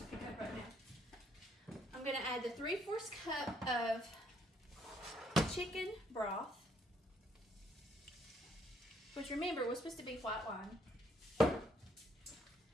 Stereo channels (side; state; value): both; normal; correlation 0.68